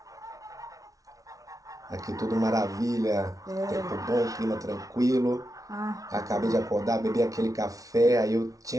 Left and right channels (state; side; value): late; left; 0.17 ms